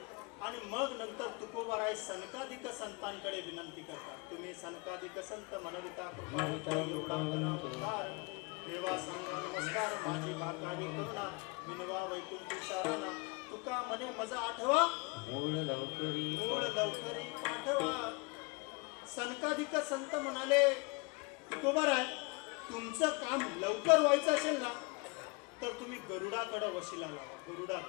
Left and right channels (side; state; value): right; quieter; 28.7 dB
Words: आणि मग नंतर तुकोबाराय सनकाधिक संतांकडे विनंती करतात. तुम्ही सनकाधिक संत मनविता कृपा देवा सांगा नमस्कार माझी भाकारी करुणा विनवा वैकुंठी साराना. तुका म्हणे मजा आठवा मूळ लवकरी पाठवा. सनकाधिक संत म्हणाले तुकोबाराय तुमचं काम लवकर व्हायचं असेल ना तर तुम्ही गरुडाकडे वशिला लावा.